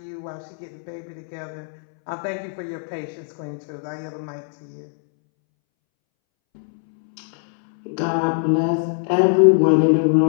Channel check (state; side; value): silent; right; 64 dB below the other